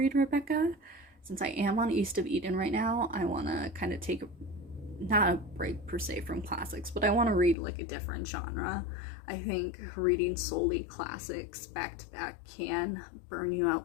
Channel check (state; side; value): drops out; right; at 7.6 s